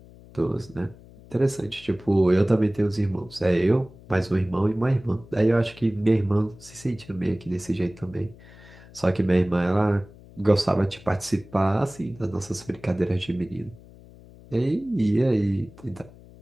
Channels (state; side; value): noise; left; hum, 22 dB below the sound